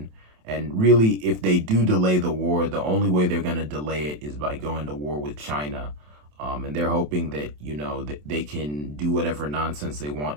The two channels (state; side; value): late; left; 27 ms